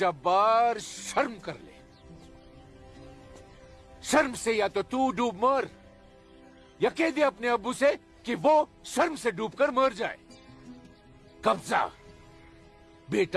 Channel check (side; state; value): both; identical; correlation 1.00